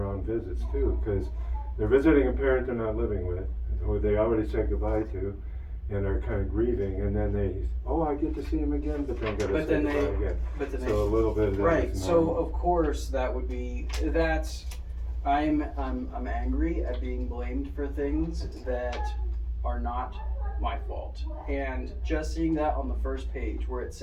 visits too, because they're visiting a parent they're not living with, who they already said goodbye to, and are kind of grieving, and then I get to see him again, but then got to say goodbye again. So a little bit of that right. is So normal. of course that's. I'm angry at being blamed for things that are not my fault. And just seeing that on the first page where it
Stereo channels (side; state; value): both; identical; correlation 1.00